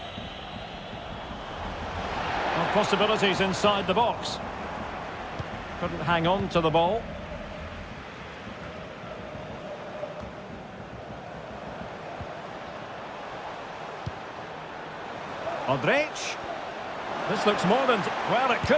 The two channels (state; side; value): identical; both; correlation 1.00